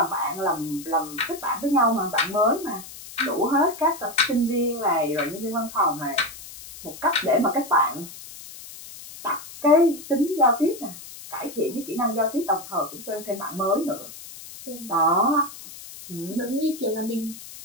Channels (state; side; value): noise; left; hiss, 15 dB below the sound